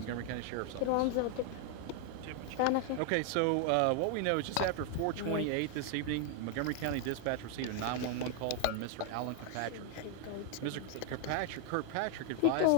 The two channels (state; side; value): different; both; correlation 0.00